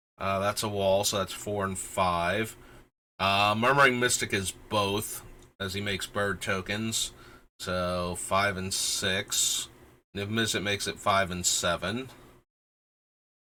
That's a wall, so that's 4 and 5. Murmuring Mystic is both, as he makes bird tokens. So 5 and 6. Niv Mizzet makes it 5 and 7.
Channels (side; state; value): both; identical; correlation 1.00